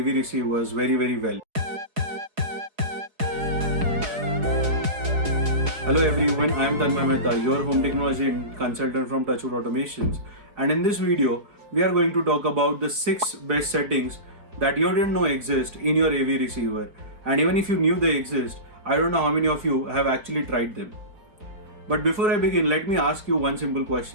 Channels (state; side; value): late; left; 4.8 ms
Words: receivers very well? Hello everyone, I am Tanmay Mehta, your home technology consultant from Touchwood Automations, and in this video we are going to talk about the 6 best settings that you didn't know exist in your AV receiver, and even if you knew they exist, I don't know how many of you have actually tried them. But before I begin, let me ask you one simple